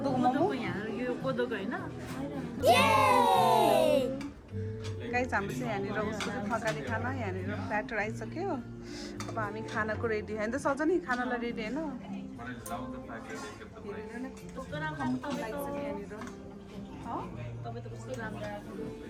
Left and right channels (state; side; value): identical; both; correlation 1.00